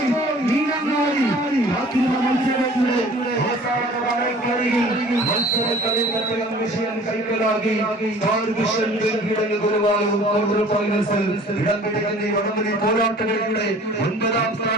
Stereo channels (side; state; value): both; normal; correlation 0.49